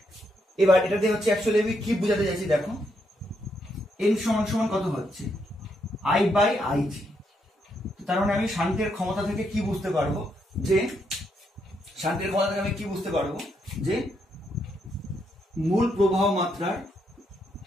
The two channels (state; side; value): normal; both; correlation 0.78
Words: এবার এটাতে হচ্ছে অ্যাকচুয়ালি আমি কি বোঝাতে চাইছি দেখো, এন সমান সমান কত হচ্ছে? I by IG. তার মানে আমি শান্তের ক্ষমতা থেকে কি বুঝতে পারবো? যে শান্তের ক্ষমতা থেকে আমি কি বুঝতে পারবো? যে মূল প্রবাহ মাত্রার